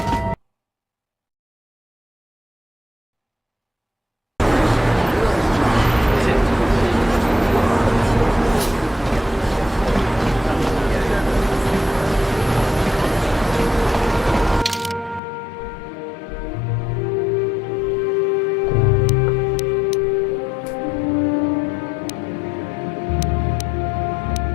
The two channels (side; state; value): right; drops out; at 15.2 s